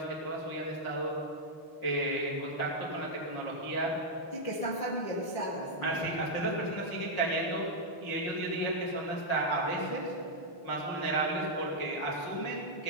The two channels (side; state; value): right; late; 5.9 ms